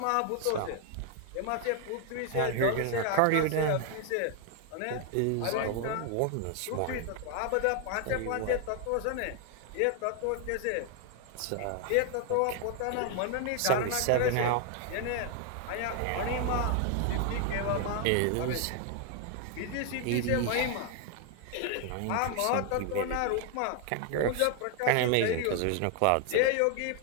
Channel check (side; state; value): both; different; correlation 0.00